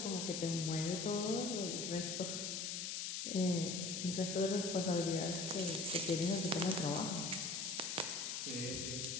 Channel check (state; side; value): noise; left; hiss, 2 dB below the sound